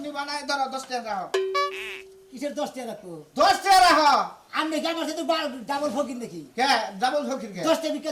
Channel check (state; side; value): identical; both; correlation 1.00